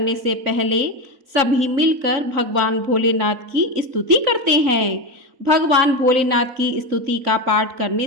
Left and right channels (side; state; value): left; late; 3.6 ms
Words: से पहले सभी मिलकर भगवान भोलेनाथ की स्तुति करते हैं। भगवान भोलेनाथ की स्तुति का पाठ करने